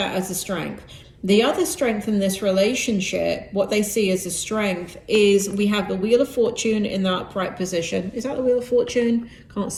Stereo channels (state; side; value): identical; both; correlation 1.00